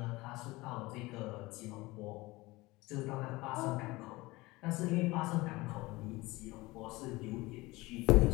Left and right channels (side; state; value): right; quieter; 21.3 dB